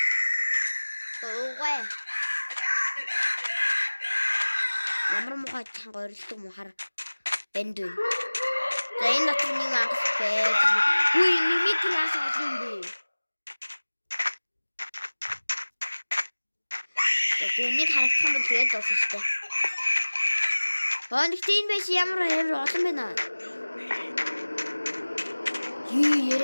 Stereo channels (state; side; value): inverted; both; correlation -1.00